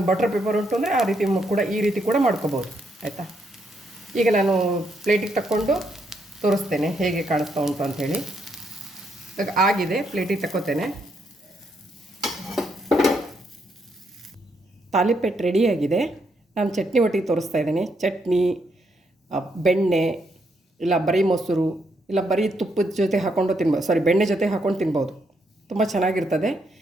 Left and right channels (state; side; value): normal; both; correlation 0.76